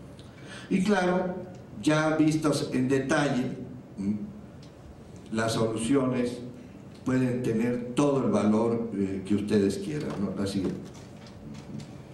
Y claro, ya vistos en detalle, las soluciones pueden tener todo el valor que ustedes quieran, ¿no? Así.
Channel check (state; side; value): identical; both; correlation 1.00